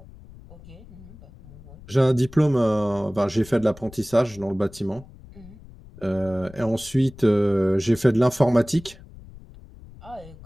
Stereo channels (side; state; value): left; noise; rumble, 20 dB below the sound